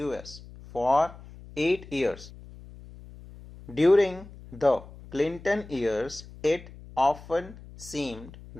US for 8 years. During the Clinton years, it often seemed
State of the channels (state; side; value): noise; left; hum, 18 dB below the sound